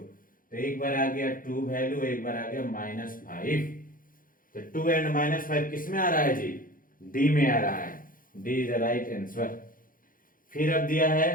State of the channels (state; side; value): late; right; 0.40 ms